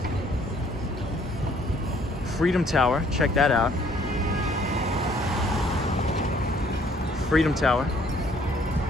Freedom Tower. Check that out. Freedom Tower.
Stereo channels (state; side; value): normal; both; correlation 0.62